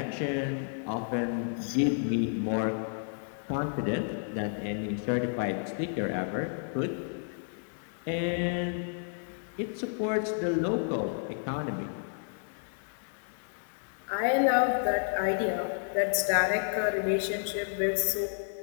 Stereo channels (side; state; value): right; silent; digital silence